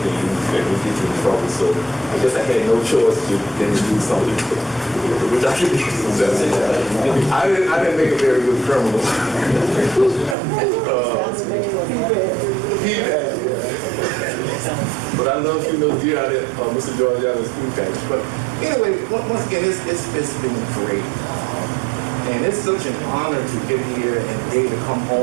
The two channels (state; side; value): drops out; left; at 10.4 s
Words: that would get you in trouble. So I guess I had no choice than to do something which I could be successful. I didn't make a very good criminal. But I love you know deer out at Mr. Georgiano's food package. But anyway, once again, it's been great. And it's such an honor to get here and be able to come